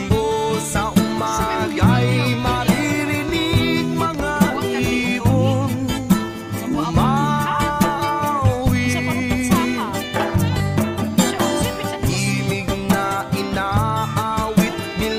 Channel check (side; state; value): both; identical; correlation 1.00